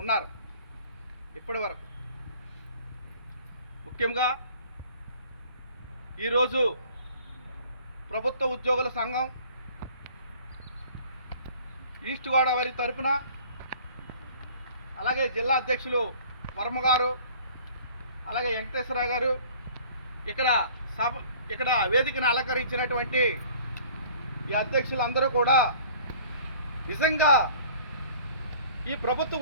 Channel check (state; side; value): inverted; both; correlation -0.50